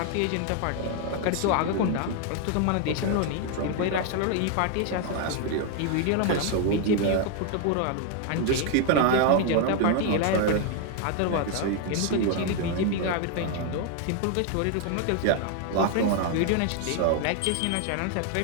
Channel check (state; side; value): different; both; correlation 0.01